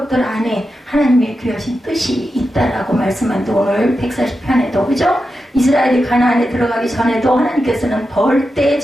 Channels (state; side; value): normal; both; correlation 0.89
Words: 안에 하나님의 귀하신 뜻이 있다라고 말씀한데 오늘 140편에도 그죠? 이스라엘이 가나안에 들어가기 전에도 하나님께서는 벌떼의